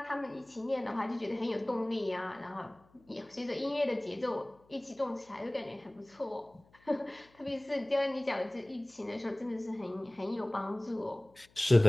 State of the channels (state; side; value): noise; left; hum, 30 dB below the sound